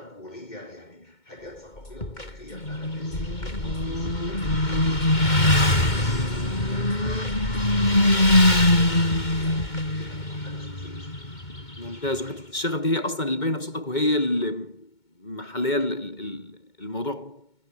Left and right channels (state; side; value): late; right; 2.2 ms